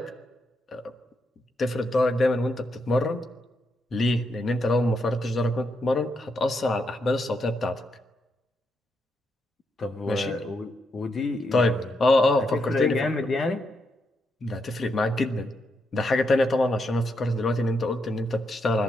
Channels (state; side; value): normal; both; correlation 0.81